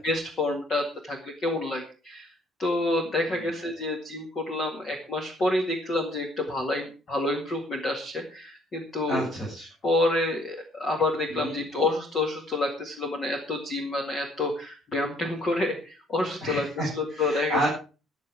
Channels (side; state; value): both; normal; correlation 0.62